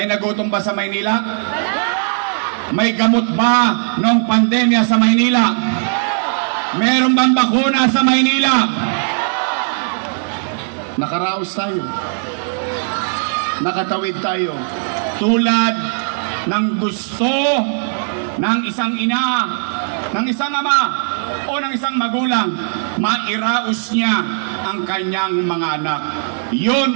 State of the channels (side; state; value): left; silent; 64 dB below the other